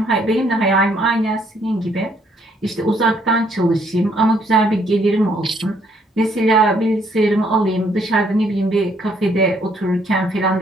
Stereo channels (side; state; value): both; normal; correlation 0.68